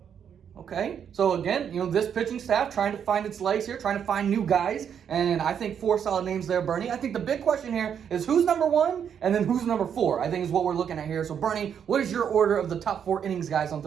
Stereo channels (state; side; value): quieter; left; 8.1 dB